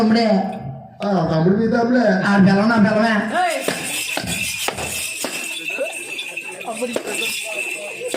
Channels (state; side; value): identical; both; correlation 1.00